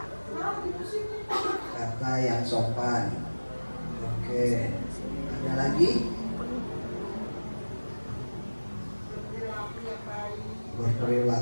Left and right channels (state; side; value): inverted; both; correlation -1.00